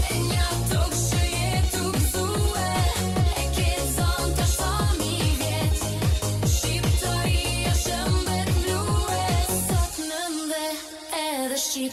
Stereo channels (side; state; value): both; identical; correlation 1.00